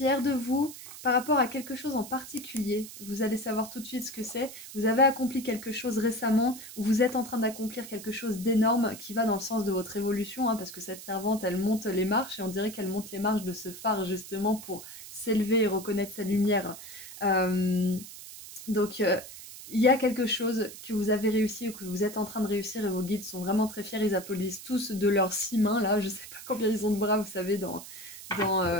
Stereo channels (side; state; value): right; noise; hiss, 14 dB below the sound